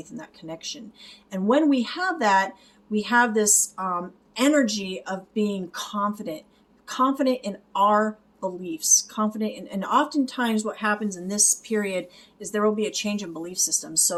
and that connection. And when we have that, we have this energy of being confident in our beliefs, confident in, and oftentimes what happens in this period is there will be a change in belief system.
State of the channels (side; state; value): both; identical; correlation 1.00